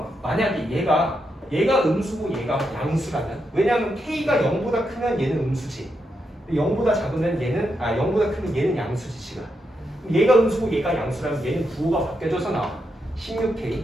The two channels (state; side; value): normal; both; correlation 0.83